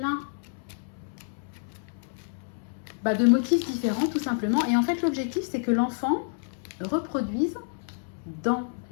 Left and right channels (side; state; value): right; silent; 59 dB below the other